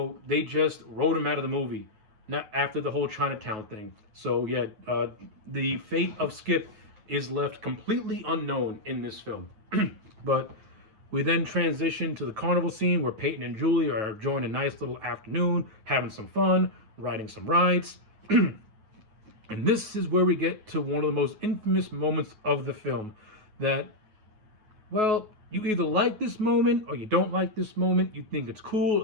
they just wrote him out of the movie. Not after the whole Chinatown thing. So yeah, the fate of Skip is left completely unknown in this film. But we then transition to the carnival scene where Peyton and Julie are enjoying a nice little afternoon, having some fun, riding some rides. And this is where we get to one of the most infamous moments of the film. That, well, you either like this moment or you don't like this moment. You think it's cool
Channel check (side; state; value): left; late; 9.3 ms